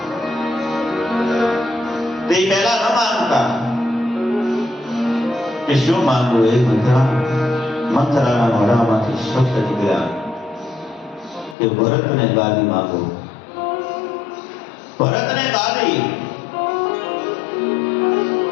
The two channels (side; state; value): right; drops out; at 11.6 s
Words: તે પહેલા ન માંગતા. કે શું માંગવું એ મંથરાના મોઢામાંથી શબ્દ નીકળ્યા કે ભરતને ગાદી માંગો, ભરતને ગાદી.